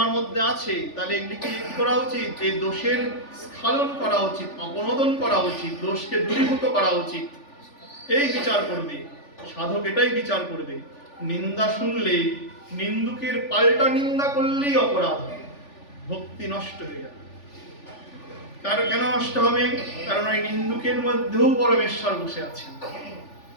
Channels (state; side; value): late; right; 3.4 ms